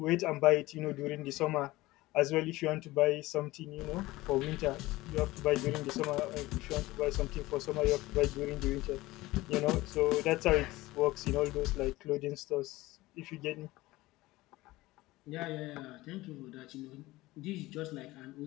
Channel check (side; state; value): right; quieter; 18.9 dB